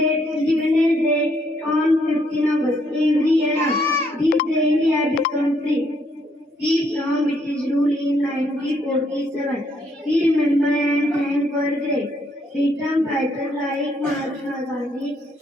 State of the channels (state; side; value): normal; both; correlation 0.71